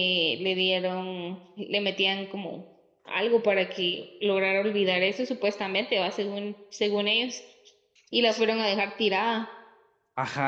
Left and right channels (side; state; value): both; identical; correlation 1.00